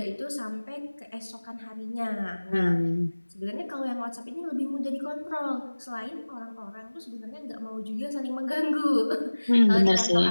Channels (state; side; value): inverted; both; correlation -1.00